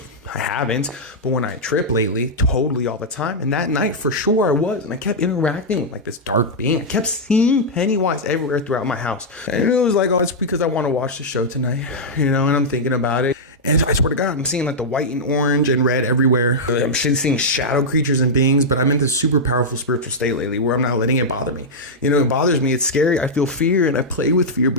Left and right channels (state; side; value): normal; both; correlation -0.06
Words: I haven't, but when I trip lately, totally all the time. And that night, for sure, I was. And I kept interacting with like this dark being. I kept seeing Pennywise everywhere throughout my house. And it was like, oh, it's because I want to watch the show tonight, and I'm thinking about it. And I swear to God, I'm seeing like the white and orange and red everywhere. I'm seeing shadow creatures and beings, but I'm in this super powerful spiritual state lately where I'm not letting it bother me. It bothers me. It's scary. I feel fear, and I play with fear